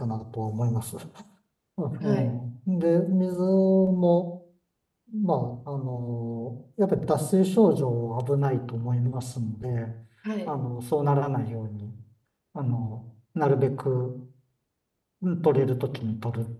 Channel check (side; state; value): both; identical; correlation 1.00